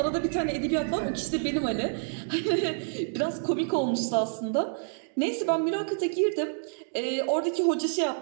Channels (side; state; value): left; silent; digital silence